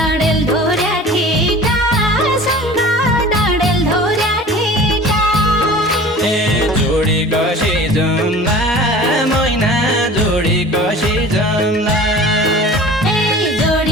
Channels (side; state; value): both; normal; correlation 0.41